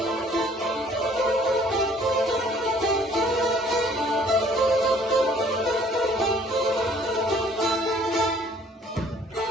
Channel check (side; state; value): both; normal; correlation 0.57